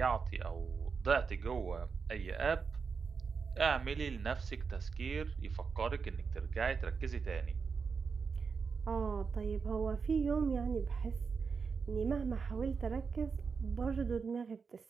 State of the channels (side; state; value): left; quieter; 5.4 dB